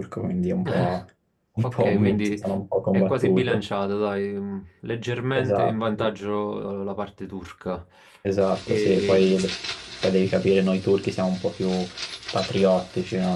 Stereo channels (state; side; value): identical; both; correlation 1.00